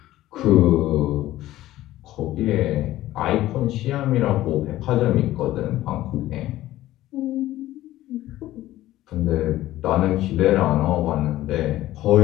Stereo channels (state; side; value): quieter; right; 15.1 dB